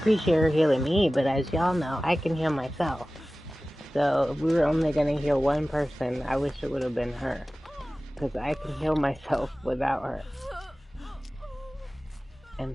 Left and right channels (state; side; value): normal; both; correlation 0.97